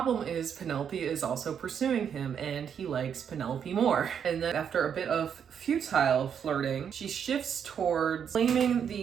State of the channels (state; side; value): quieter; left; 7.9 dB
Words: is, Penelope is also pursuing him, and he likes Penelope more. And then after a bit of futile flirting, she shifts towards claiming